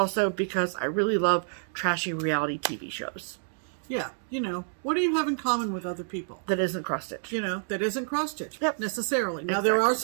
because I really love trashy reality TV shows. Yeah, you know, what do you have in common with other people? That isn't cross-stitch. You know, that isn't cross-stitch necessarily. Now, Exactly. there are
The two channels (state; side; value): silent; left; digital silence